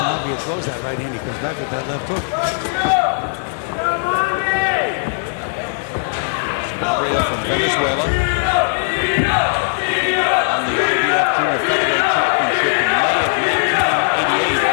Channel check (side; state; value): right; silent; digital silence